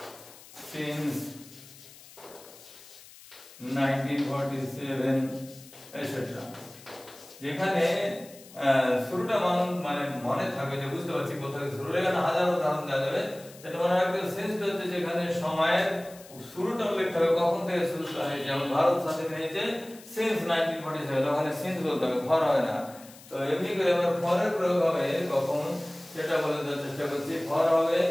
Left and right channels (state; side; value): noise; left; hiss, 20 dB below the sound